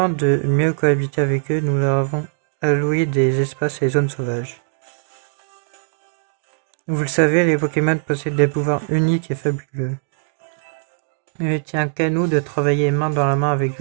de mieux cohabiter avec eux, nous leur avons alloué des espaces et zones sauvages. Vous le savez, les Pokémon possèdent des pouvoirs uniques et fabuleux. Il ne tient qu'à nous de travailler main dans la main avec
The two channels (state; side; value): silent; left; digital silence